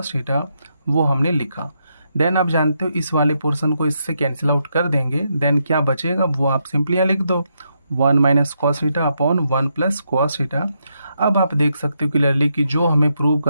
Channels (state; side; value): inverted; both; correlation -0.80